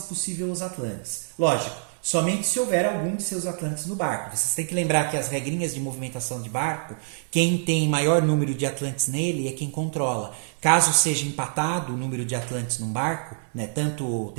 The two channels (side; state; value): left; silent; digital silence